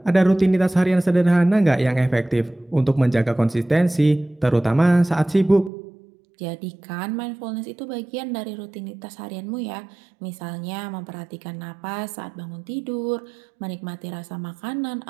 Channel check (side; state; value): left; drops out; at 5.7 s